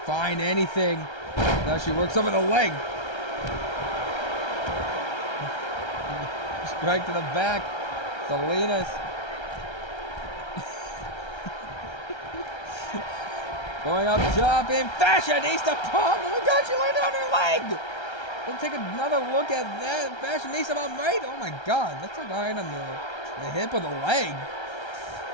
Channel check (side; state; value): right; late; 1.3 ms